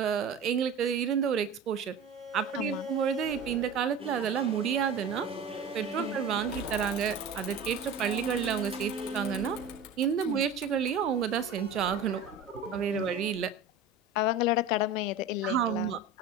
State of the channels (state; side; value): quieter; left; 3.8 dB